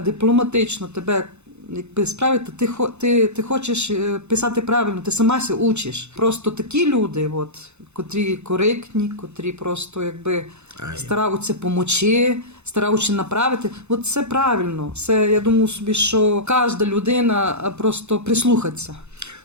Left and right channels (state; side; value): late; left; 0.81 ms